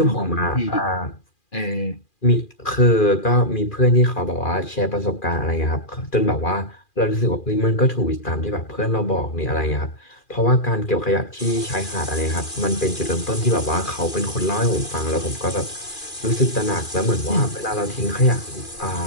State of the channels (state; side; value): late; right; 2.4 ms